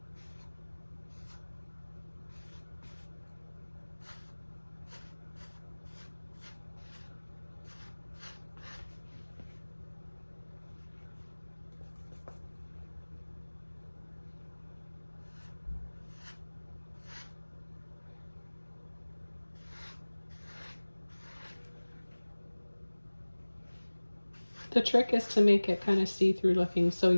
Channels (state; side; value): inverted; both; correlation -1.00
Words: The trick is to make it kind of see-through looking, so